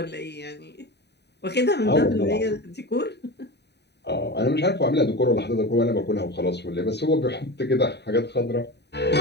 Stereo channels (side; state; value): right; late; 0.49 ms